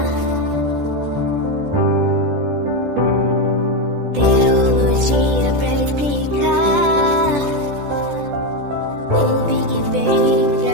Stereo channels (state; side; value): late; left; 14 ms